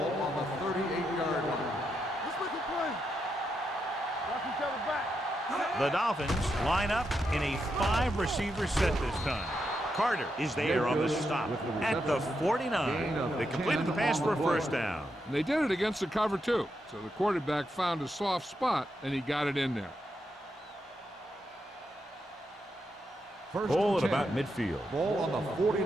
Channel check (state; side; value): normal; both; correlation 0.83